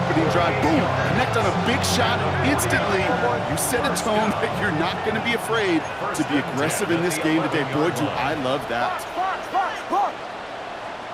drive. Boom! Connect on a big shot instantly. You set a tone that you're not going to be afraid to be aggressive in this game today. Boy, do I love that.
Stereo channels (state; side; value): identical; both; correlation 1.00